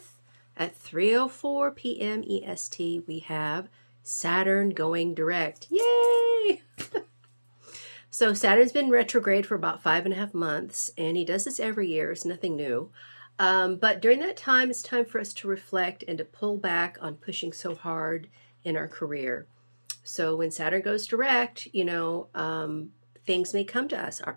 at 3:04 p.m. EST? We have Saturn going direct. Yay! So Saturn's been retrograde for about 5.5 months, and he does this every year. It's nothing new. But during that time, it's time for us to reflect and to pull back on pushing so hard in our career. So when Saturn goes direct, things may come to us,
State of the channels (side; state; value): both; inverted; correlation -1.00